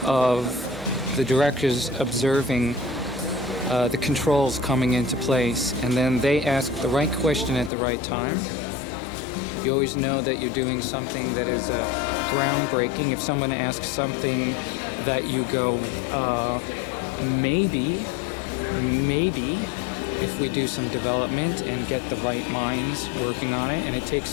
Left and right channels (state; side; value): drops out; right; at 7.7 s